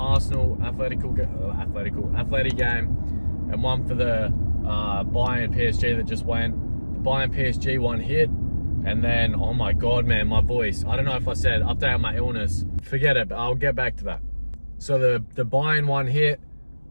athletic game, and one for the Bayern PSG that just went. The Bayern PSG one hit, and then, oh my God, man, my voice. I don't know if I said update on my illness. Forget it, but I'll get back to that. So the Bayern one hit,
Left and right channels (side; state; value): both; inverted; correlation -1.00